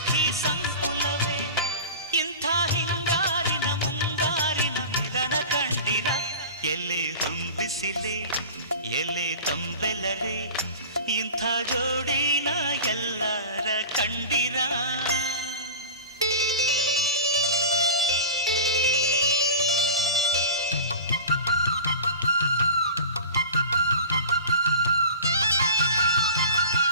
ಸಂಕುಲವೇ ಇಂಥ ಹಿಂಗಾರಿನ ಮುಂಗಾರಿನ ಮಿಲನ ಕಂಡಿರ ಎಲೆ ಹೊಂಬಿಸಿಲೆ ಎಲೆ ತಂಬೆಲರೆ ಇಂಥ ಜೋಡಿನ ಎಲ್ಲರ ಕಂಡಿರ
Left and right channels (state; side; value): inverted; both; correlation -0.35